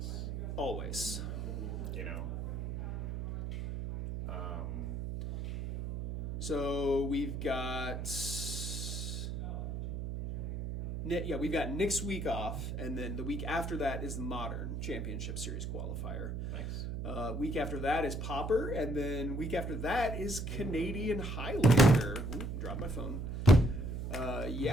Always. You know. So we've got we've got next week off, and then the week after that is the Modern Championship Series qualifier. Nice. Week after that is Pauper, and then week after that is Canadian Highlander. Ooh, dropped my phone.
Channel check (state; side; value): noise; right; hum, 4 dB below the sound